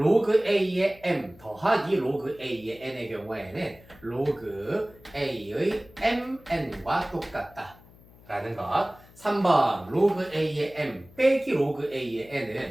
A의 M 더하기 로그 A의 N의 경우에는 로그 A의 MN과 똑같다 라는 것. 3번 로그 A의 M 빼기 로그 A의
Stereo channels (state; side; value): noise; left; hum, 24 dB below the sound